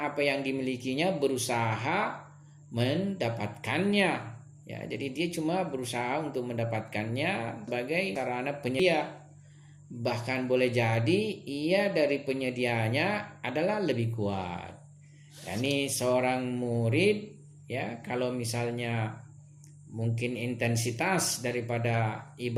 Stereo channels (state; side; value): identical; both; correlation 1.00